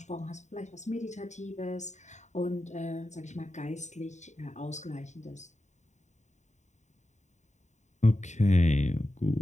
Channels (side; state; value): right; late; 0.34 ms